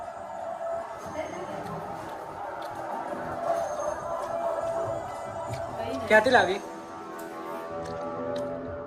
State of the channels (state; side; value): identical; both; correlation 1.00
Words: क्या तिला अभी